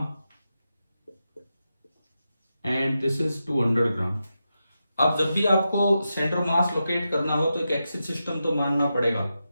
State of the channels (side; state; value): both; inverted; correlation -0.89